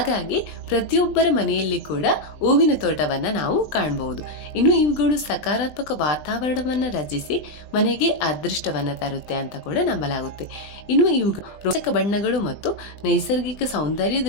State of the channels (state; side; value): late; right; 20 ms